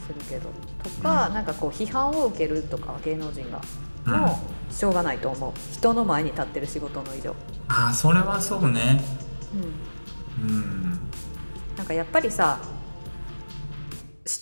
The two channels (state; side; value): inverted; both; correlation -1.00